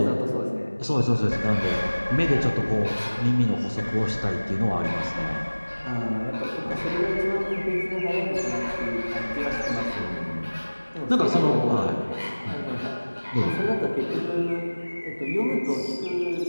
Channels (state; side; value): inverted; both; correlation -1.00